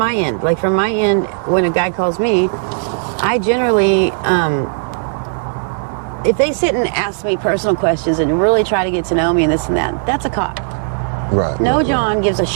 end. Like, from my end, when a guy calls me, I generally, if they sit and ask me personal questions and really try to get to know me and this and that, that's a cop. Right. No John gives a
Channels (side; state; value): left; silent; digital silence